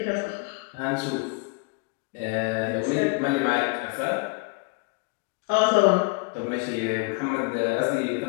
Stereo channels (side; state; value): right; quieter; 31.0 dB